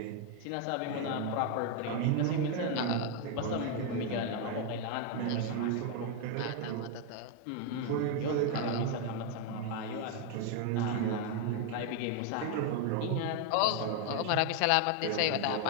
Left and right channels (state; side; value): different; both; correlation 0.01